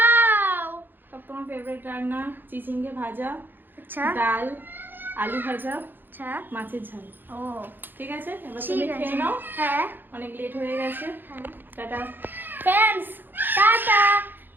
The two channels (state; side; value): late; left; 0.094 ms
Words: সব তোমার ফেভারিট রান্না, চিচিঙ্গে ভাজা, আচ্ছা ডাল, আলু ভাজা, আচ্ছা। মাছের ঝাল। ও ঠিক আছে, এবার ঠিক তুমি আছে। খেয়ে নাও, হ্যাঁ অনেক লেট হয়ে গেছে। হ্যাঁ। Tata. Friends tata.